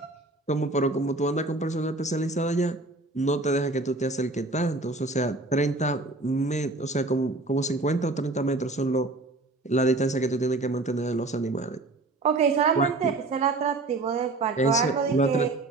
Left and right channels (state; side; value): quieter; left; 3.1 dB